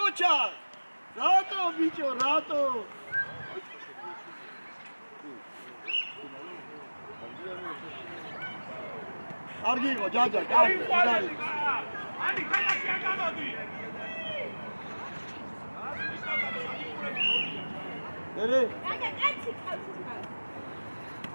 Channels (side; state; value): both; inverted; correlation -1.00